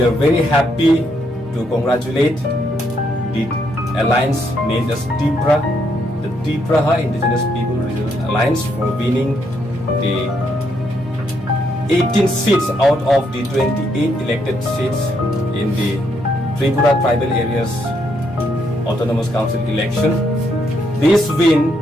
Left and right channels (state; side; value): normal; both; correlation 0.75